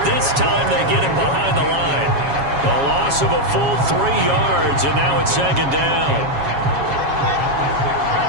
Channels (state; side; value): late; left; 7.3 ms